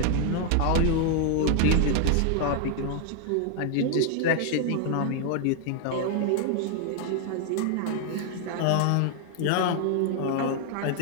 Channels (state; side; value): different; both; correlation 0.00